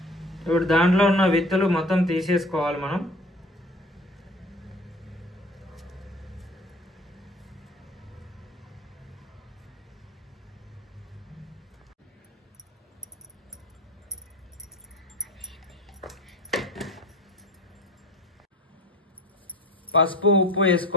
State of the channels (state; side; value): normal; both; correlation 0.42